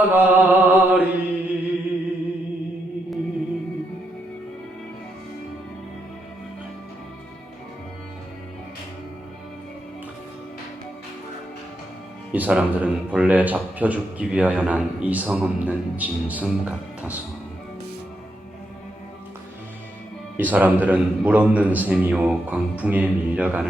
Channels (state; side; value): normal; both; correlation 0.81